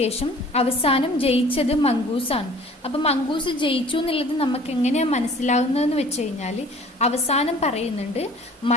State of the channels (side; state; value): both; normal; correlation 0.49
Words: അവസാനം ജയിച്ചത് മംഗൂസാണ്. അപ്പം മംഗൂസ് ജയിച്ചു എന്നുള്ളത് നമുക്ക് എങ്ങനെയാണ് മനസ്സിലാവുന്നതെന്ന് വെച്ച് കഴിഞ്ഞാൽ അവസാനം പറയുന്നുണ്ട്,